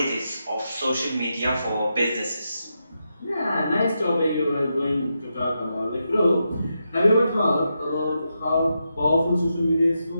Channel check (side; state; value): both; inverted; correlation -0.86